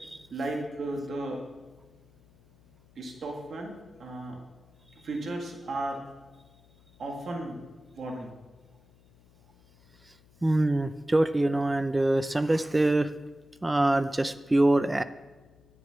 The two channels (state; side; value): noise; left; hum, 29 dB below the sound